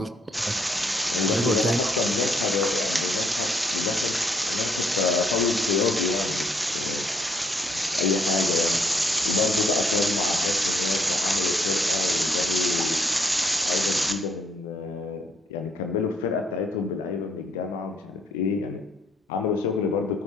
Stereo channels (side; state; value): both; normal; correlation 0.69